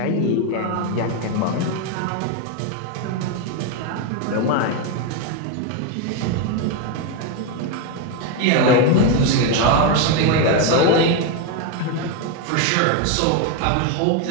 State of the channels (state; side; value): different; both; correlation 0.02